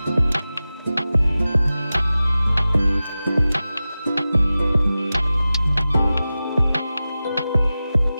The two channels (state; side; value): inverted; both; correlation -0.95